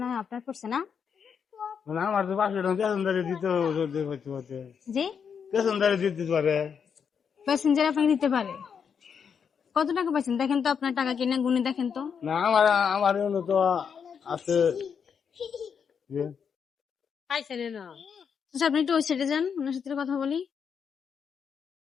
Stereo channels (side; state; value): right; quieter; 6.9 dB